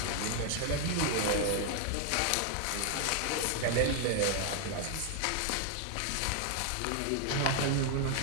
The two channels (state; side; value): different; both; correlation 0.00